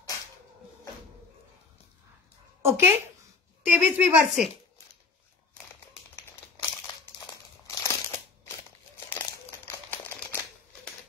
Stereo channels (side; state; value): right; quieter; 4.5 dB